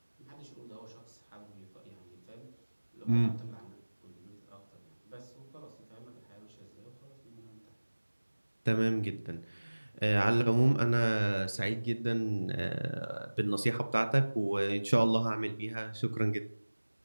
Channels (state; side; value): inverted; both; correlation -1.00